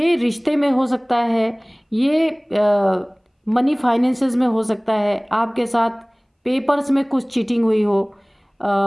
रिश्ते में हो सकता है, ये मनी फाइनेंसेस में हो सकता है, आपके साथ पेपर्स में कुछ चीटिंग हुई हो,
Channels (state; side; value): identical; both; correlation 1.00